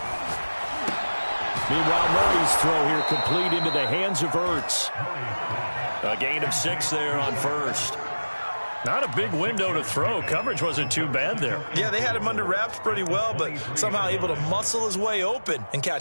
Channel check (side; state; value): both; inverted; correlation -1.00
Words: Meanwhile, Murray's throw here complete into the hands of Ertz. A gain of 6 there on first. Not a big window to throw. Coverage wasn't too bad there. Yeah, they had him under wraps pretty well, but somehow able to muscle his way open and